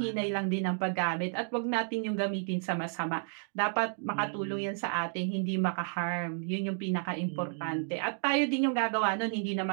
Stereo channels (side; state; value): left; silent; 57 dB below the other